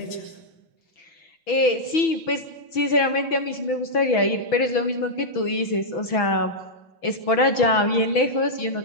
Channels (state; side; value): late; right; 6.1 ms